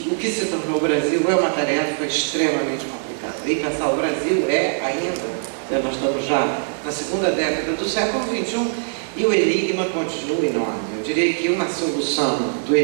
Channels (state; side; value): silent; left; digital silence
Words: se tornou o Brasil é uma tarefa extremamente complicada. E pensar o Brasil ainda, nós estamos já na segunda década do século XXI, e o enigma continua enorme. Eu diria que uma solução do